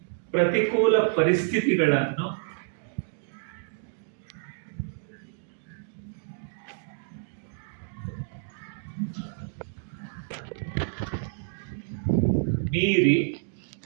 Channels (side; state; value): left; silent; digital silence